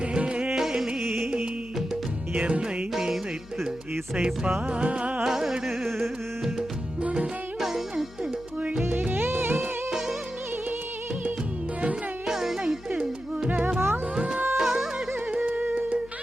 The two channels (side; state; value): left; noise; hum, 20 dB below the sound